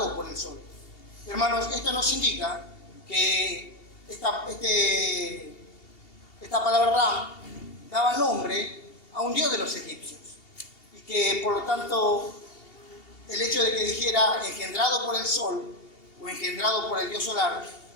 por el sol. Hermanos, esto nos indica que esta palabra Ram daba nombre a un dios de los egipcios y que por lo tanto el hecho de que dijera engendrado por el sol o engendrado por el dios solar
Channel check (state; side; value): late; right; 2.8 ms